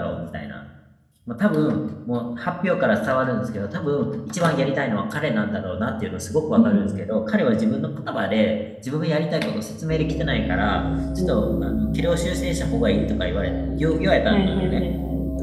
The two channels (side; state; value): both; identical; correlation 1.00